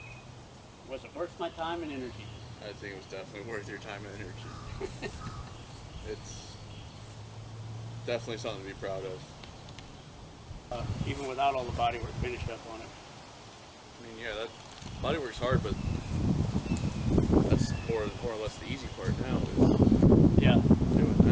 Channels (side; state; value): both; identical; correlation 1.00